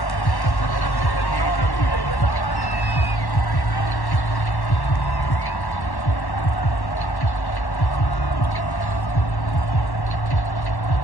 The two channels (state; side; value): late; right; 1.1 ms